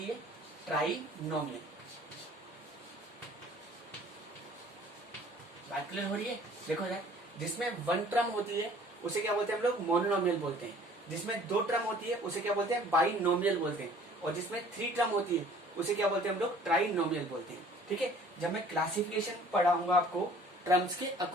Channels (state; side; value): normal; both; correlation 0.52